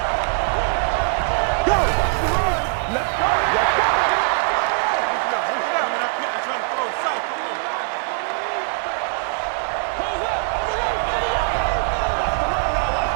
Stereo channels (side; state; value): left; silent; 64 dB below the other